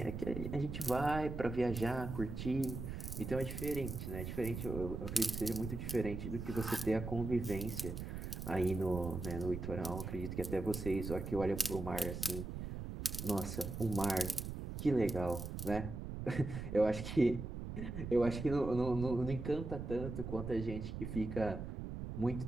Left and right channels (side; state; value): right; noise; rumble, 6 dB below the sound